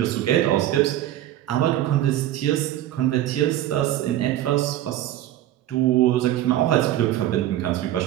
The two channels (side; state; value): left; quieter; 13.2 dB